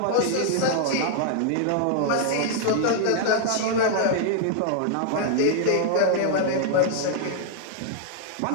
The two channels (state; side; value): different; both; correlation -0.01